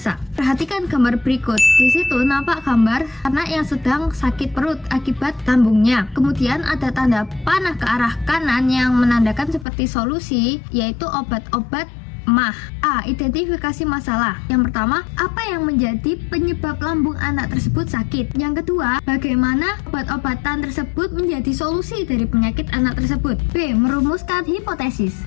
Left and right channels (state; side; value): drops out; right; at 9.7 s